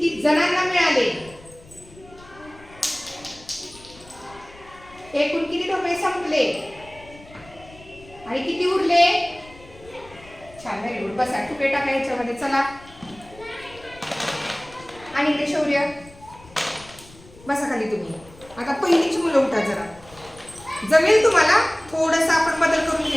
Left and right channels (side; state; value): left; noise; rumble, 22 dB below the sound